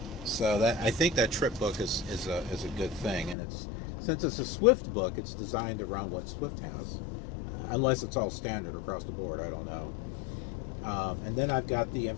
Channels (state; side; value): drops out; right; at 3.4 s